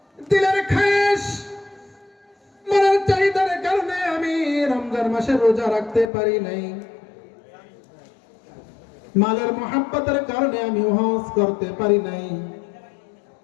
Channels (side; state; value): right; drops out; at 6.1 s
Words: দিলের খায়েশ, মনের চাহিদার কারণে আমি রমজান মাসে রোজা রাখতে পারি নাই, মালের মহাব্বতের কারণে আমি হজ করতে পারি নাই,